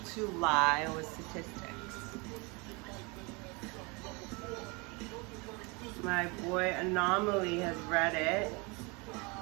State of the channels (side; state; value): left; quieter; 28.6 dB